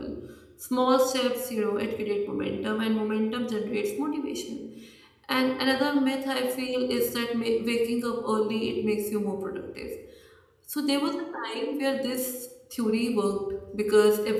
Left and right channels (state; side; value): identical; both; correlation 1.00